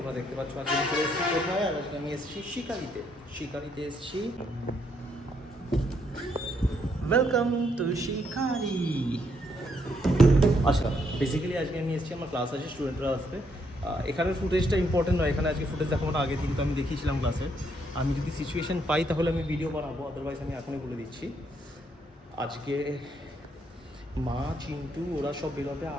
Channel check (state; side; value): normal; both; correlation 0.74